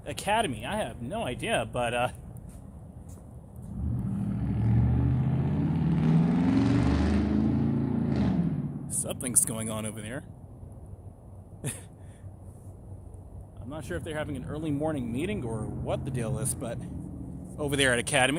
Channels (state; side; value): identical; both; correlation 1.00